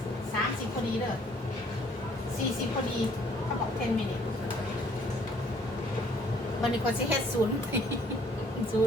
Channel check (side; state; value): both; normal; correlation 0.61